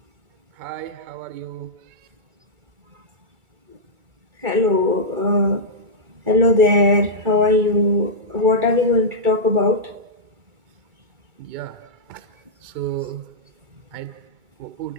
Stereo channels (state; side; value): late; left; 2.3 ms